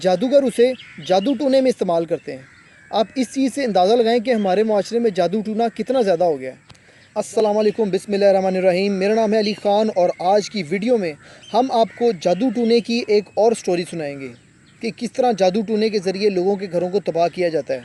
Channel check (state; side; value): identical; both; correlation 1.00